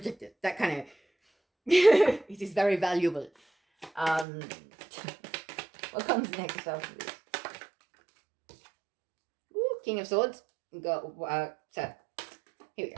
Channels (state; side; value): drops out; left; at 4.2 s